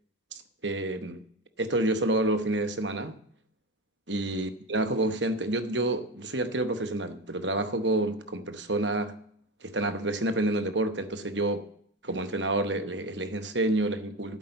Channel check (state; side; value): normal; both; correlation 0.21